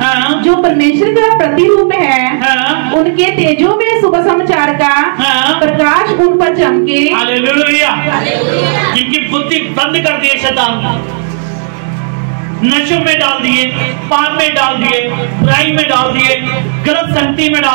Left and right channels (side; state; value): left; silent; digital silence